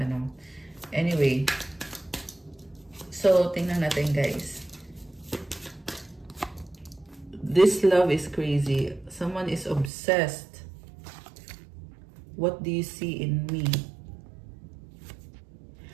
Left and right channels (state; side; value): drops out; left; at 9.9 s